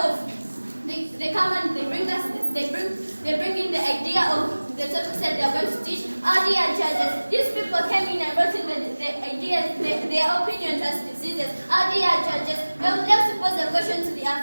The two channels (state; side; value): inverted; both; correlation -1.00